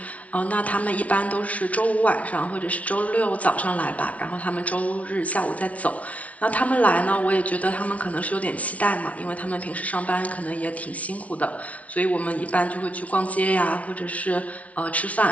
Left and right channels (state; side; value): late; right; 0.066 ms